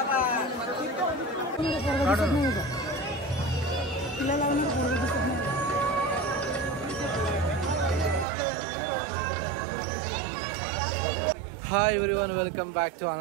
Hi everyone, welcome back to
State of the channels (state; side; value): drops out; left; at 8.2 s